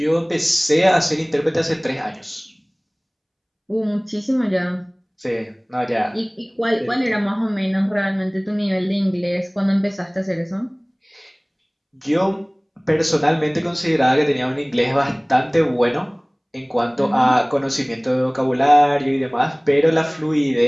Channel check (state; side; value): identical; both; correlation 1.00